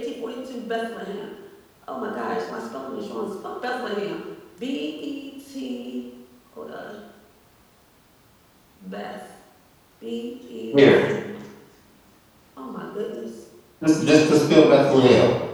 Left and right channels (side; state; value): both; identical; correlation 1.00